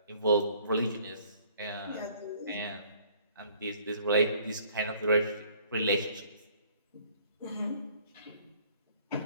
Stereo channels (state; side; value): inverted; both; correlation -0.58